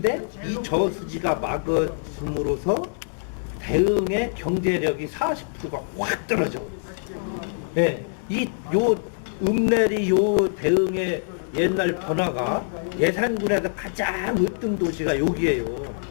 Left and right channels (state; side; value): silent; right; digital silence